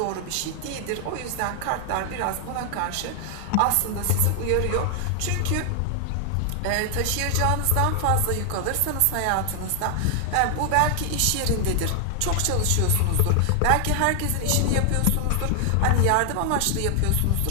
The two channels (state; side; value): different; both; correlation 0.00